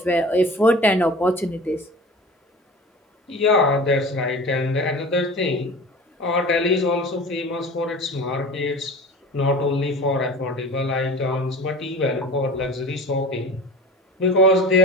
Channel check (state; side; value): normal; both; correlation 0.37